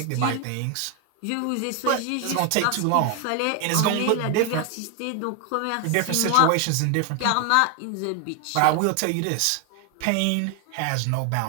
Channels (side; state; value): both; different; correlation 0.01